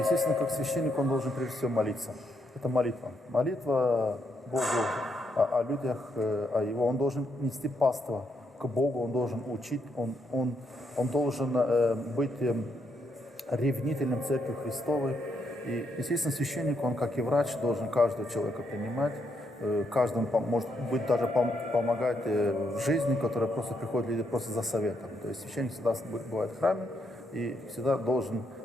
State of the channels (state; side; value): normal; both; correlation 0.78